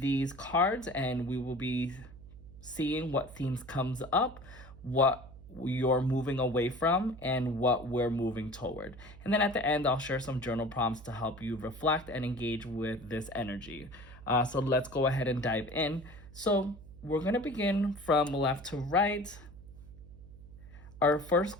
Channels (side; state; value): right; noise; hum, 18 dB below the sound